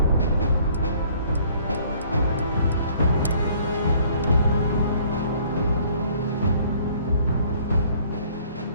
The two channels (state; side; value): inverted; both; correlation -0.58